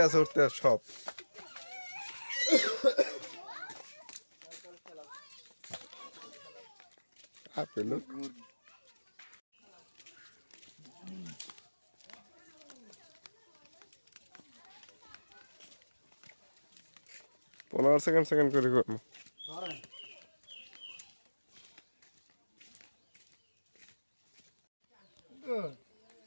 আছে সব আপেল 15 সেকেন্ড করে করবো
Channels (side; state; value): both; inverted; correlation -1.00